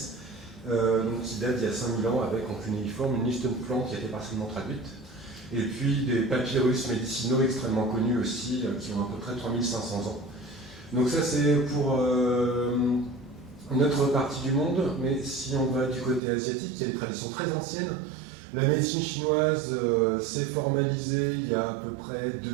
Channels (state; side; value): drops out; left; at 16.2 s